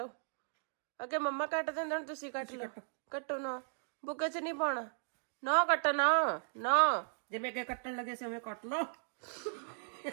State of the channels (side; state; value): left; silent; digital silence